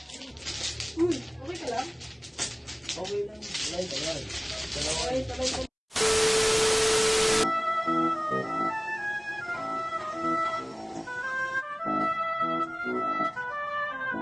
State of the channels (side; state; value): both; identical; correlation 1.00